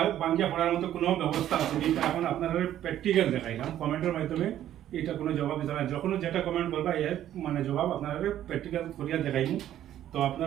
ভাঙিয়া পড়ার মতো কোনো ব্যবস্থা আছে এটা এখন আপনারা প্র্যাকটিক্যাল দেখাইলাম কমেন্টের মাধ্যমে। এটা কোনো জবাব দিতে না, যখন যেটা কমেন্ট করবা এর মানে জবাব আপনারা প্র্যাকটিক্যাল করিয়া দেখাইনি। তো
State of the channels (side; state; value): left; quieter; 11.8 dB